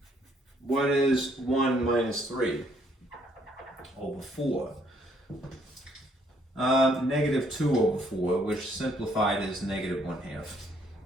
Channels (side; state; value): both; normal; correlation 0.67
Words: What is 1 minus 3 over 4? Negative 2 over 4, which simplified is negative 1/2.